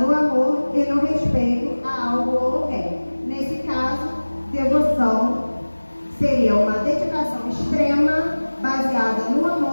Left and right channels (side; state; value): both; inverted; correlation -1.00